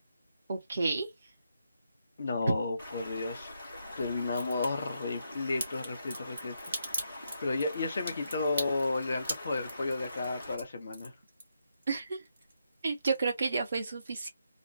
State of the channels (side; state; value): both; inverted; correlation -0.80